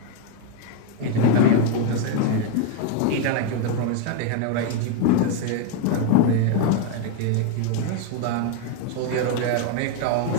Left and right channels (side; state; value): both; different; correlation 0.01